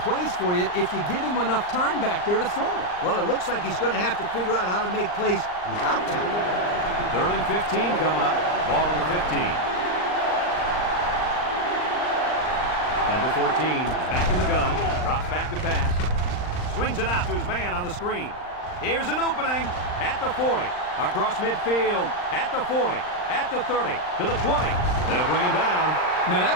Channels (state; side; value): late; right; 39 ms